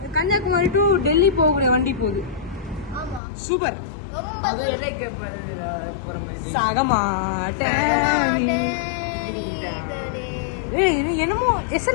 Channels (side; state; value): right; drops out; at 3.2 s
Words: கன்னியாகுமரி டு டெல்லி போகக்கூடிய வண்டி போகுது. சூப்பர். என்னமோ